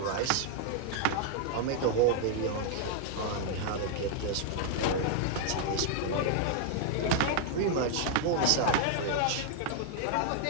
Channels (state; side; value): different; both; correlation 0.00